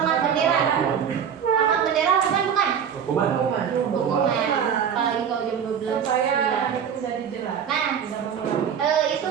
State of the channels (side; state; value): left; quieter; 7.9 dB